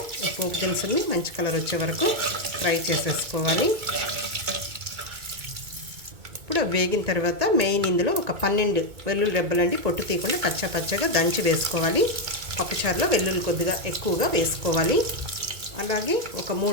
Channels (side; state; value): left; late; 2.2 ms